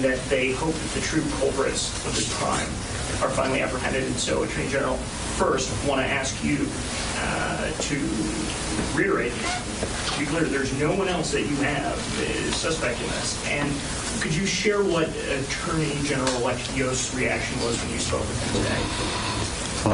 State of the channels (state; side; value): identical; both; correlation 1.00